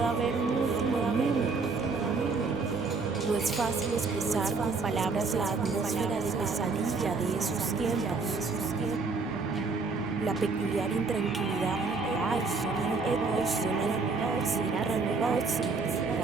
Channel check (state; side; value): quieter; left; 4.2 dB